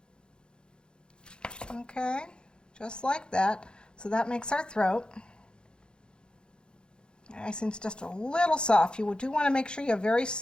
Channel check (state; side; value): late; right; 0.049 ms